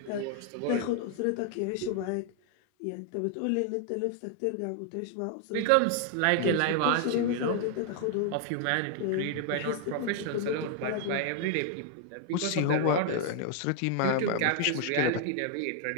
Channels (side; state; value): both; different; correlation 0.00